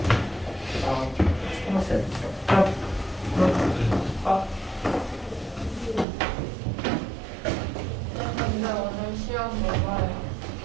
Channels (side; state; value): left; drops out; at 6.1 s